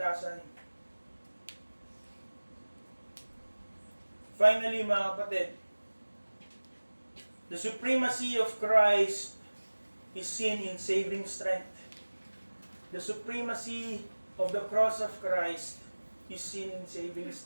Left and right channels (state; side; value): inverted; both; correlation -1.00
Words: Finally, mga kapatid, the supremacy of Christ is seen in saving strength. The supremacy of the cross of Christ is seen in saving